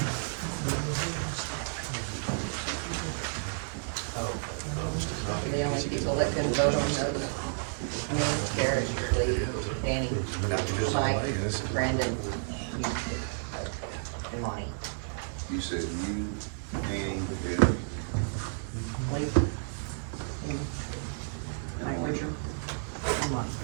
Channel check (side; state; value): left; silent; digital silence